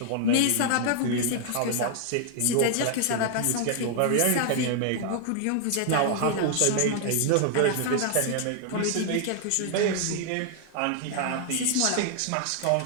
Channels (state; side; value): different; both; correlation 0.00